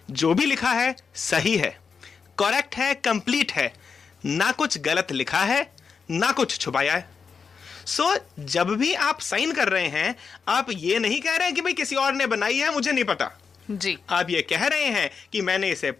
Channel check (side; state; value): right; quieter; 5.7 dB